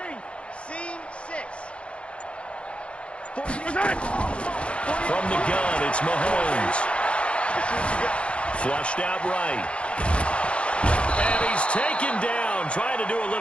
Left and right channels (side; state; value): right; late; 0.060 ms